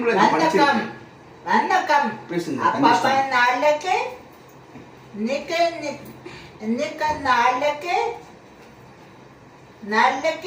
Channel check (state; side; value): identical; both; correlation 1.00